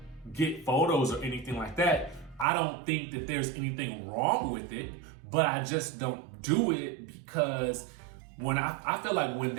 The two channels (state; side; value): drops out; left; at 2.5 s